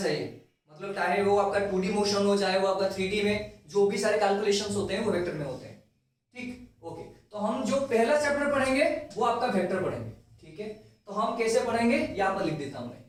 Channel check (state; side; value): identical; both; correlation 1.00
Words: चाहिए, मतलब चाहे वो आपका 2D मोशन हो, चाहे वो आपका 3D में जो भी सारे कैलकुलेशंस होते हैं वो वेक्टर में होते हैं, ठीक, ओके। तो हम जो पहला चैप्टर पढ़ेंगे वो आपका वेक्टर पढ़ेंगे, ठीक है। तो हम कैसे पढ़ेंगे, यहां पर लिख देता हूं मैं,